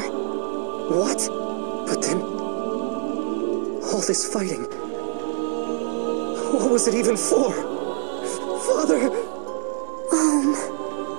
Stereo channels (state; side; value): silent; left; 59 dB below the other